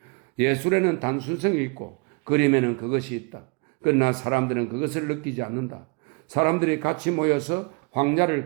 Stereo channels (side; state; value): left; quieter; 33.1 dB